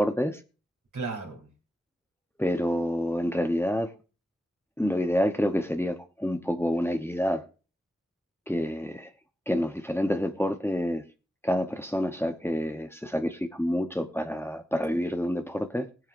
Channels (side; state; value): both; normal; correlation 0.90